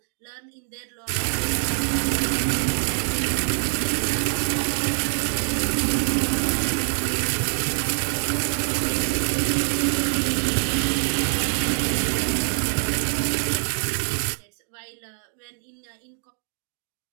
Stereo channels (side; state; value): left; silent; 62 dB below the other